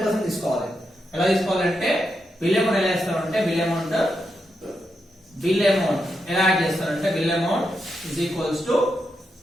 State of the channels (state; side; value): normal; both; correlation 0.84